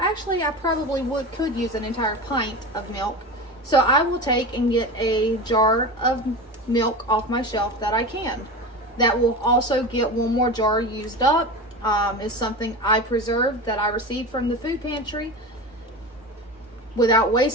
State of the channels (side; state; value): both; normal; correlation 0.27